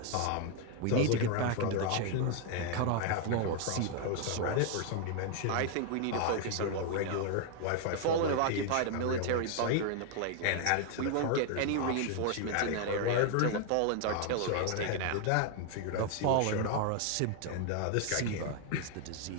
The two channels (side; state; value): both; different; correlation 0.00